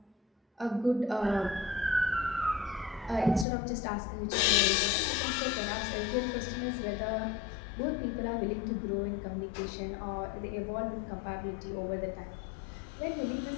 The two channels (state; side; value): drops out; right; at 3.5 s